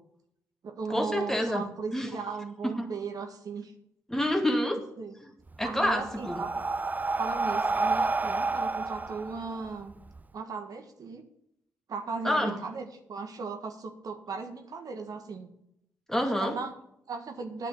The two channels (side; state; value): both; normal; correlation 0.84